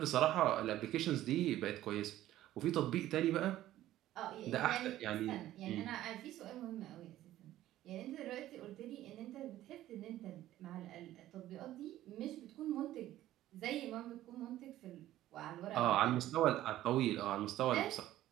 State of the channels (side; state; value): left; quieter; 14.0 dB